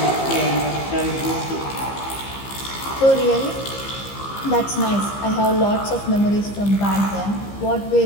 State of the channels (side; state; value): right; late; 15 ms